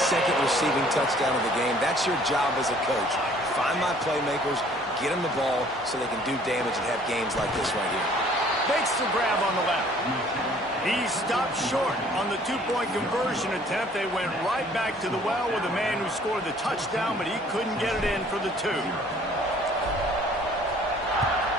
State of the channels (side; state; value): both; normal; correlation 0.56